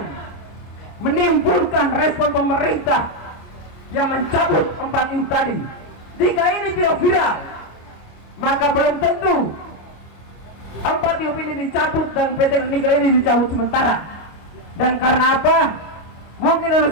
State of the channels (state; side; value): late; right; 25 ms